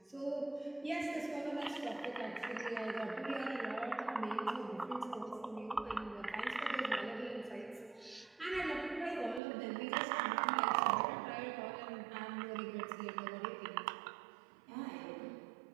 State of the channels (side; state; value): left; drops out; at 9.4 s